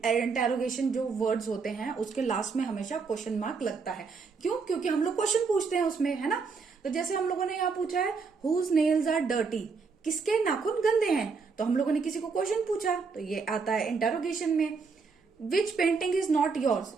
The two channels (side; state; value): left; quieter; 5.0 dB